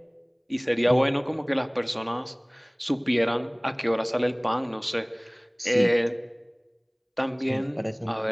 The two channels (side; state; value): both; identical; correlation 1.00